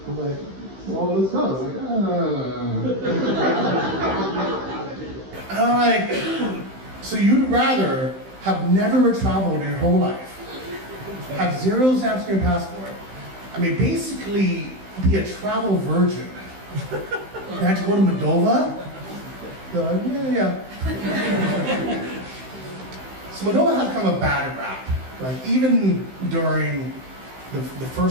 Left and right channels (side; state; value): left; late; 15 ms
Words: I'm like, well, let's go. I'm like, so you'd rather have never traveled in your whole life, have 0 stamps in your passport, basically be a travel virgin, and have to go to Moldova? They're like, yeah. So Moldova has kind of a bad rap. Even during the